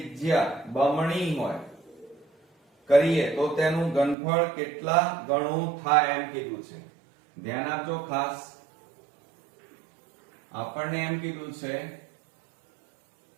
બમણી હોય કરીએ તો તેનું ઘનફળ કેટલા ગણું થાય એમ કીધું છે. ધ્યાન આપજો ખાસ. આપણને એમ કીધું છે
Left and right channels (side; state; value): left; drops out; at 4.2 s